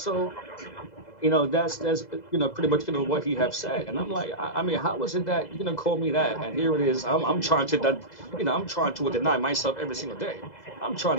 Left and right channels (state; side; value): late; right; 2.0 ms